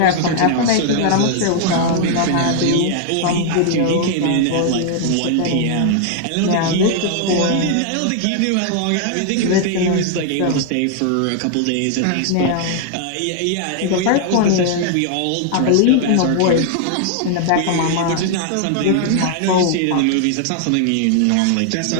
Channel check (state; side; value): different; both; correlation 0.00